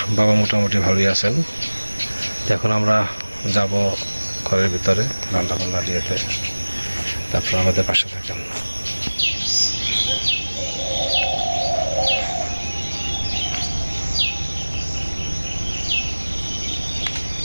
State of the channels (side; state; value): both; inverted; correlation -1.00